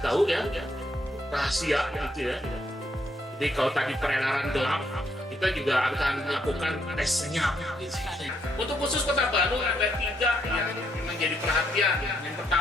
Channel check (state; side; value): normal; both; correlation 0.74